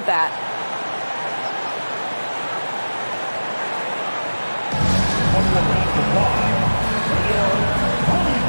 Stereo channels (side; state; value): both; inverted; correlation -1.00